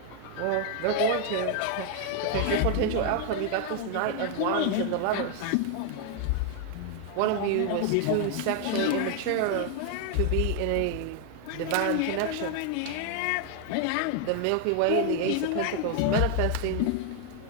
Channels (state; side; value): different; both; correlation 0.00